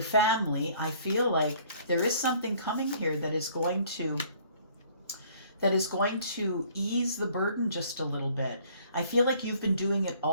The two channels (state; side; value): inverted; both; correlation -0.58